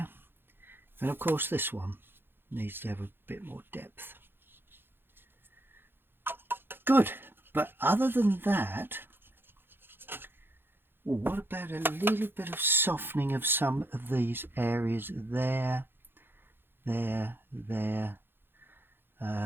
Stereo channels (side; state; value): left; late; 0.10 ms